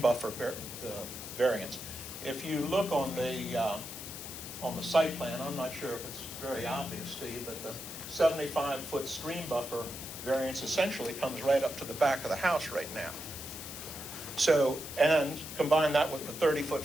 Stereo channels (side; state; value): left; noise; hiss, 9 dB below the sound